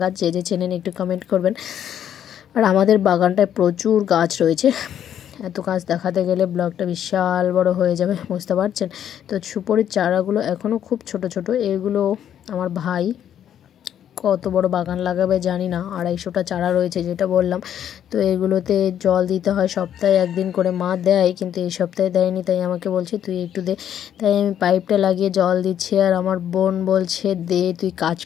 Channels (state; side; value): quieter; right; 9.9 dB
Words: গাছ, যে যে চেনেন একটু কমেন্ট করবেন। আর আমাদের বাগানটায় প্রচুর গাছ রয়েছে, এত গাছ দেখাতে গেলে ব্লগটা বিশাল বড় হয়ে যাবে, বুঝতে পারছেন। তো সুপারির চারাগুলো এখনও খুব ছোট ছোট, এগুলো আমার ভাই কত বড় বাগান লাগাবে জানি না। 250টা চারা রয়েছে যেটা বললাম। তো এগুলোতে জল দিতে হয় সপ্তাহে একদিন করে, মা দেয় কিন্তু এই সপ্তাহে দেয়নি, তাই আমাকে বলছে তুই একটু দে। তাই আমি পাইপটা লাগিয়ে জল দিচ্ছি। আর আমার বোন বলছে দে, তুই কাজ